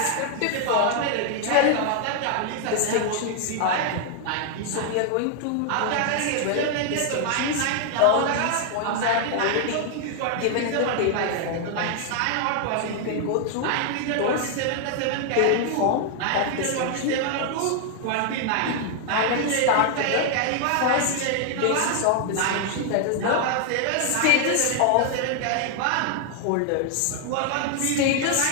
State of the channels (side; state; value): both; different; correlation 0.00